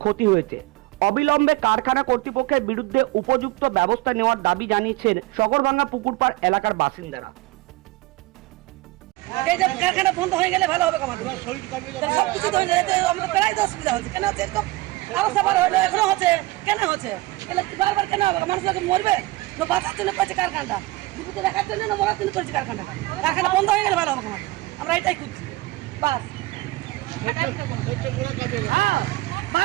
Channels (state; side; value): quieter; left; 20.0 dB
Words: ক্ষতি হয়েছে। অবিলম্বে কারখানা কর্তৃপক্ষের বিরুদ্ধে উপযুক্ত ব্যবস্থা নেওয়ার দাবি জানিয়েছেন সগরভাঙা পুকুরপাড় এলাকার বাসিন্দারা। এই যে কারখানা বন্ধ হয়ে গেলে ভালো হবে আমাদের সবকিছু তো আমাদের প্রায় অসুবিধা হচ্ছে। কেন হচ্ছে এরকম অবস্থা বার হলো, এখনো হচ্ছে, কেন হচ্ছে? এগুলো বারবার কেন হবে? মানুষ মরবে না বাঁচার জন্য করেছে কারখানাটা, জীবিত রাখার জন্য না মরার জন্য করেছে কারখানাটা। কারখানা বন্ধ হয়ে গেলে ভালো হবে আমাদের, আমরা এটাই খুঁজছি বাস। হ্যাঁ,